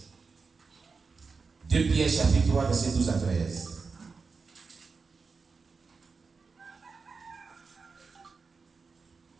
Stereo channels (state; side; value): quieter; left; 4.7 dB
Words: 2 Pierre chapitre 3, verset 12 à 13.